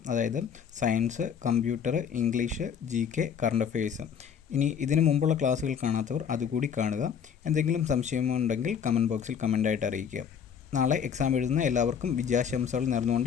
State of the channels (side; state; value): right; quieter; 7.6 dB